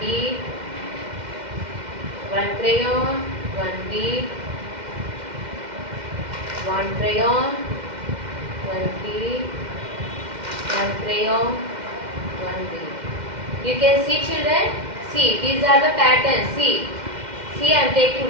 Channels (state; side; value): late; left; 2.1 ms